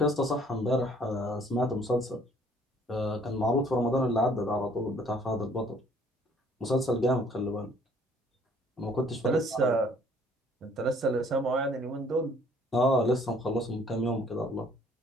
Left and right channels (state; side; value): normal; both; correlation 0.59